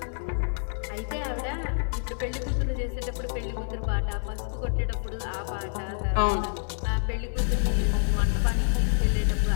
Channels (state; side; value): silent; right; digital silence